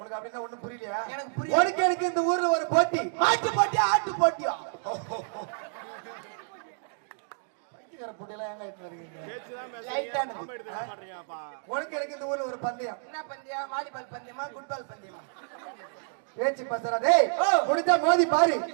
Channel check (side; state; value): left; silent; digital silence